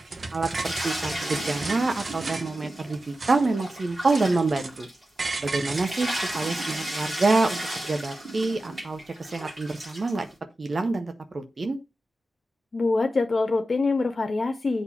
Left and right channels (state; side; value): normal; both; correlation 0.92